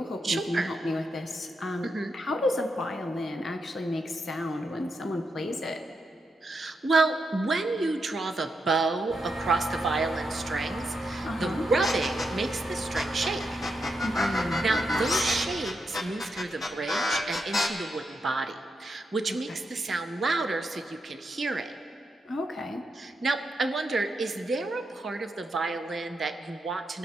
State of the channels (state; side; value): normal; both; correlation 0.84